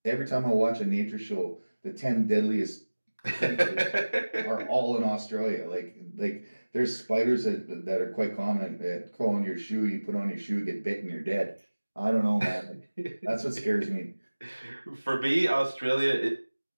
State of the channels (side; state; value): both; inverted; correlation -1.00